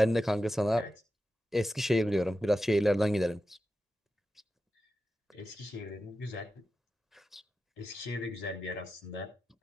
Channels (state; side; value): normal; both; correlation 0.91